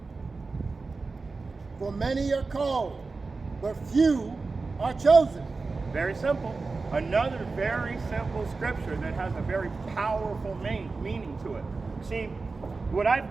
For many are called, but few are chosen. Very simple. Another very simple scripture that has a very powerful meaning to it. See, what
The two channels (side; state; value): left; quieter; 4.0 dB